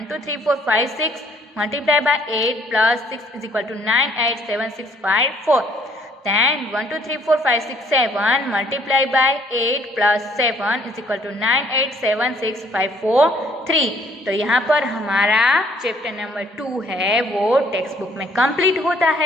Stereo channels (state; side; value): normal; both; correlation 0.63